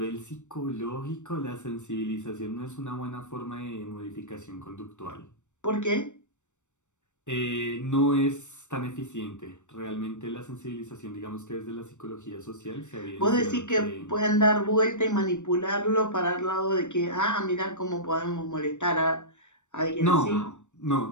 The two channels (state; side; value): late; right; 0.84 ms